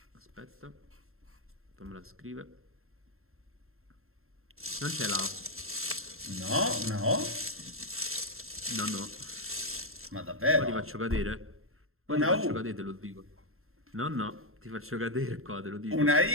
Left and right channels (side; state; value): left; late; 0.62 ms